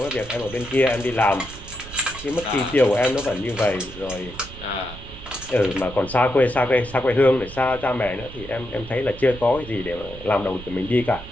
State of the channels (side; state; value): right; noise; rumble, 15 dB below the sound